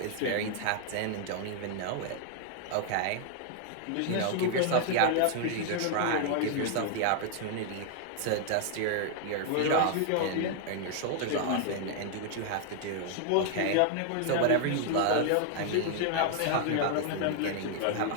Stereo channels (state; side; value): different; both; correlation 0.00